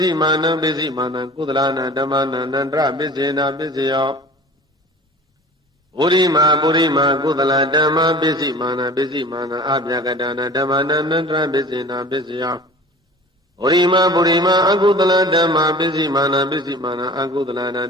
ည်းမာနံပစ္စည်းမာနံကုသလနာဓမ္မနံနန္တရပစ္စေနာပစ္စယောပုရိမာပုရိမာကုသလဓမ္မပစ္စည်းမာနပစ္စည်းမာနအပြကတနာဓမ္မနံနန္တရပစ္စေနာပစ္စယောပုရိမာပုရိမာအကုသလဓမ္မပစ္စည်းမာနပစ္စည်းမာနအကုသလနာ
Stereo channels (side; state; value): both; normal; correlation 0.41